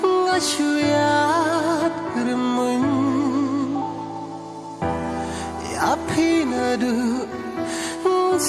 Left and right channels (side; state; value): both; identical; correlation 1.00